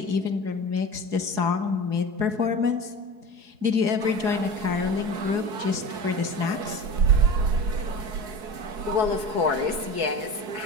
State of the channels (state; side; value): late; left; 4.7 ms